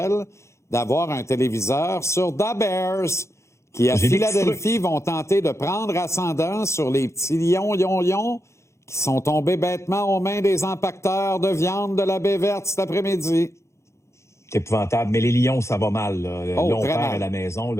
d'avoir un téléviseur sur The Bears, qui à Philadelphie vont tenter de prendre ascendant sur les petits lions qui sont tombés bêtement aux mains des empaqueteurs de viande de la baie verte cet après-midi. C'est épouvantable. Mais les Lions, ça va mal. Là, on perd à la maison.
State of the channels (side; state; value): right; late; 0.14 ms